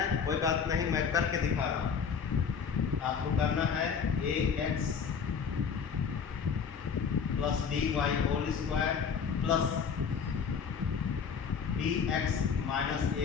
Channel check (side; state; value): right; quieter; 6.4 dB